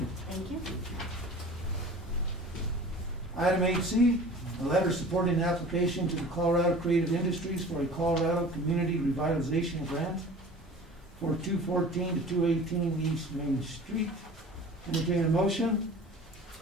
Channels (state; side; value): normal; both; correlation 0.42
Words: you. Thank you. Item 8C, a letter supporting the application to the Colorado Creative Industries for a Colorado Community Revitalization Grant for 214 to 218 East Main Street. Entertain a motion?